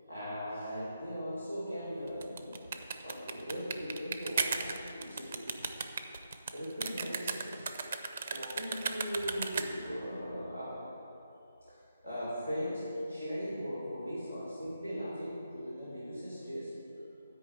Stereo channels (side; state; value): both; inverted; correlation -0.84